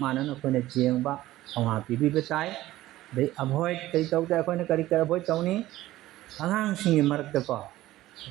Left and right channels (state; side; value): quieter; left; 15.8 dB